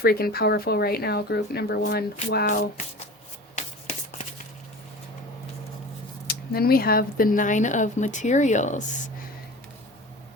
powerful right now, group number one. Wow. Then we have the Nine of Materials.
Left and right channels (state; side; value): normal; both; correlation 0.36